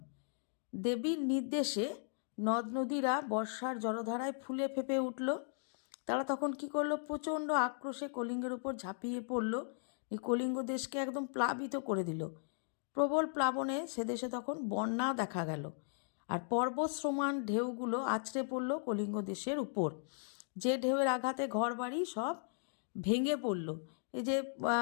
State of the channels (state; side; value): silent; right; digital silence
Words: দেবীর নির্দেশে নদ নদীরা বর্ষার জলধারায় ফুলে ফেঁপে উঠল। তারা তখন কি করলো? প্রচণ্ড আক্রোশে কলিঙ্গের উপর ঝাঁপিয়ে পড়ল। এই কলিঙ্গ দেশকে একদম প্লাবিত করে দিল। প্রবল প্লাবনে সে দেশে তখন বন্যা দেখা গেল। আর পর্বত সমান ঢেউগুলো আছড়ে পড়ল কলিঙ্গ দেশের উপর। যে ঢেউয়ের আঘাতে ঘরবাড়ি সব ভেঙে পড়ল। এই যে